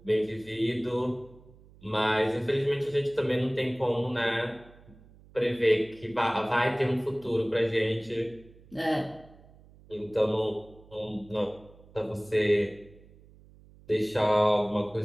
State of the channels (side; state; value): right; noise; hum, 24 dB below the sound